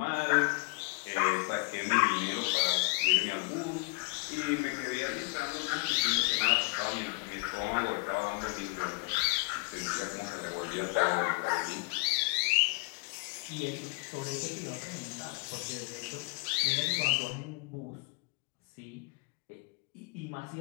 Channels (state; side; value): quieter; right; 30.8 dB